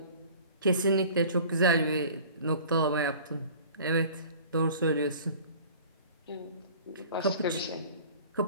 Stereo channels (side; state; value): both; inverted; correlation -0.45